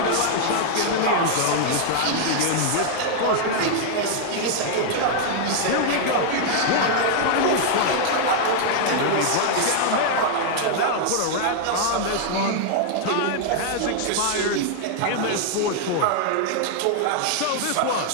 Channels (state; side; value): different; both; correlation 0.00